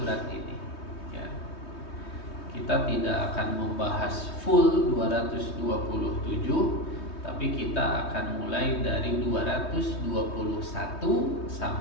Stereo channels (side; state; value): right; late; 3.2 ms